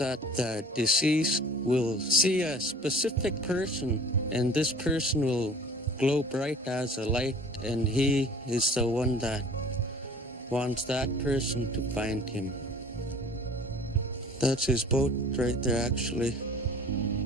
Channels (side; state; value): both; normal; correlation 0.47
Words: the deceased will see a specific person, and this person will glow bright as a light, and he is the one that wants that person to find him. That's his boat right there, actually.